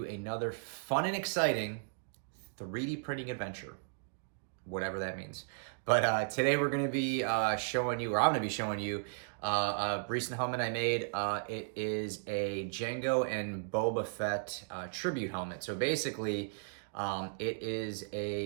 another fun and exciting 3D printing adventure, whatever that means. But today we're going to be showing you, or I'm going to be showing you, a recent helmet I made. It is a Jango and Boba Fett tribute helmet. So basically, it is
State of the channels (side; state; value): left; silent; digital silence